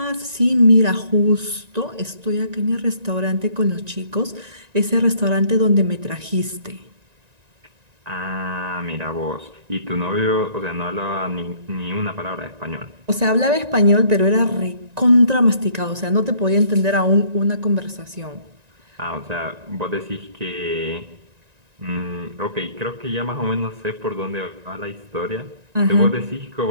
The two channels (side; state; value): left; late; 1.9 ms